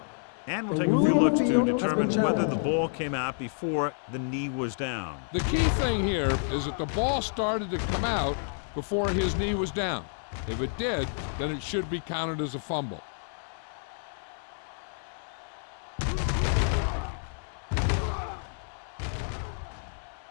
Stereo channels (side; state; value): right; silent; digital silence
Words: And we'll take a few looks to determine whether the ball came out before the knee was down. The key thing here is that the ball started to come out before his knee was down. If it did, then it should be counted as a fumble.